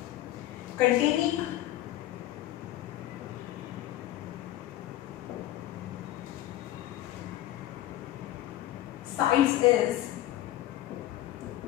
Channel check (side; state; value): right; quieter; 14.3 dB